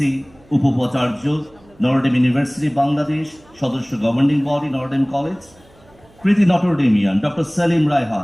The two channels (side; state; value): right; noise; hum, 29 dB below the sound